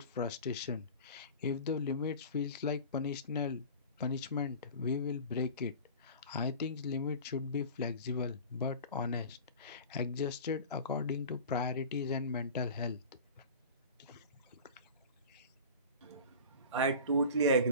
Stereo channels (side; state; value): both; inverted; correlation -0.37